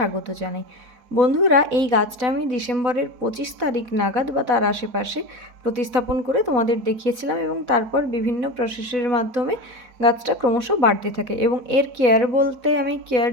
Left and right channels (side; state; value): left; late; 4.0 ms